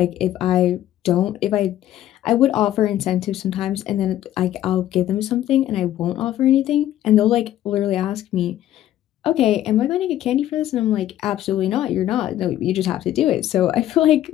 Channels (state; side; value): quieter; right; 12.7 dB